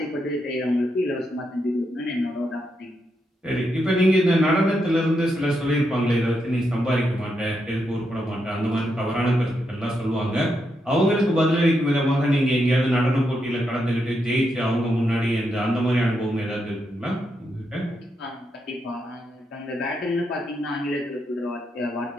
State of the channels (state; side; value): normal; both; correlation 0.82